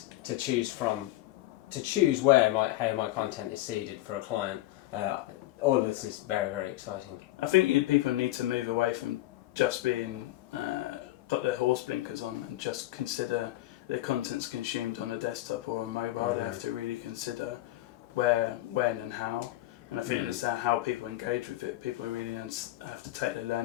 to choose from, to choose how my content is seeded for a client. All of this is very, very exciting. I think people need to move away from just being got their horse blinkers on and just consider their content's consumed on a desktop or a mobile. Mm-hmm. They have to really consider where, when and how. And I think it's how people engage with it. People really have to take their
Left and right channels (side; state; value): right; quieter; 16.3 dB